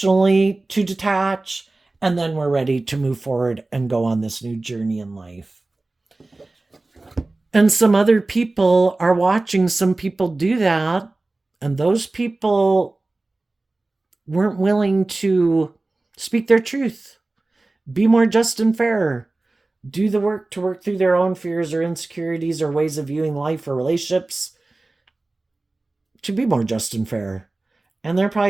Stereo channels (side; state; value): left; quieter; 3.1 dB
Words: to detach, and then we're ready to move forward and go on this new journey in life. And some other people are watching some people do that, And those people weren't willing to speak their truth, be more just and fair, do the work to work through their own fears or insecurities or ways of viewing life or relationships to be more just and fair. And they're